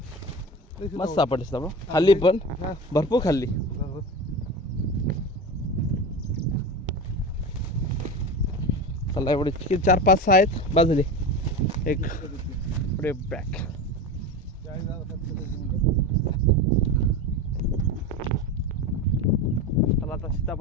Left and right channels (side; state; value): both; normal; correlation 0.26